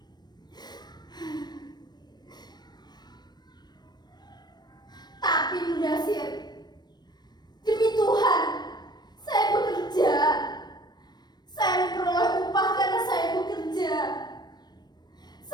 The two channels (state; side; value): late; right; 0.20 ms